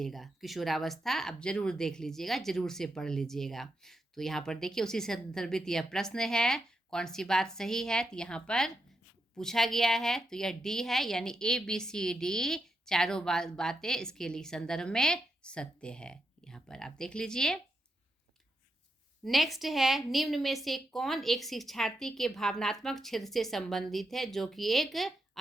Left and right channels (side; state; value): both; normal; correlation 0.84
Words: किशोरावस्था आप जरूर देख लीजिएगा, जरूर से पढ़ लीजिएगा। तो यहाँ पर देखिए उसी संदर्भित यह प्रश्न है, कौन सी बात सही है, तो यहाँ पर पूछा गया है, तो यह D है, यानी ABCD चारों बातें इसके लिए संदर्भ में सत्य है। यहाँ पर आप देख लीजिए। नेक्स्ट है, निम्न में से कौन एक शिक्षार्थी के भावनात्मक क्षेत्र से संबंधित है जो कि एक